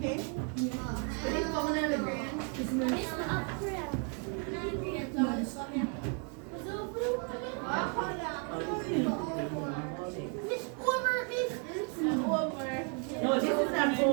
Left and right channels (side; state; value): left; quieter; 39.5 dB